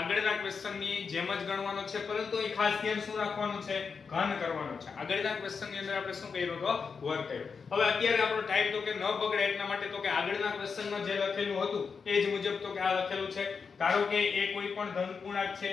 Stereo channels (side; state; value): right; quieter; 5.5 dB